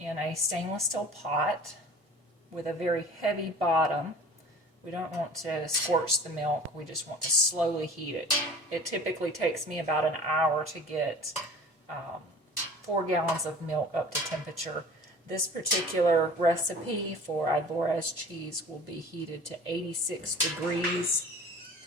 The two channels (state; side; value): normal; both; correlation 0.43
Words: in a stainless steel pot with a very heavy bottom. We don't want to scorch the milk, we just want to slowly heat it. It typically takes me about an hour to get 4 gallons of milk up to temperature. This particular recipe for Ibores cheese will be heated to 86 degrees